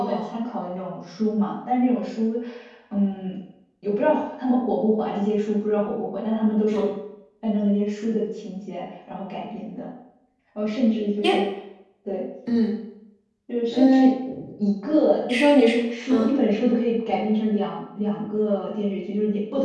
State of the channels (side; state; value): both; identical; correlation 1.00